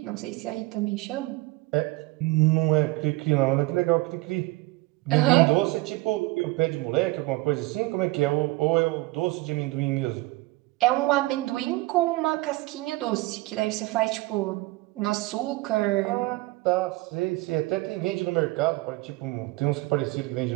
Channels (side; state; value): left; quieter; 21.1 dB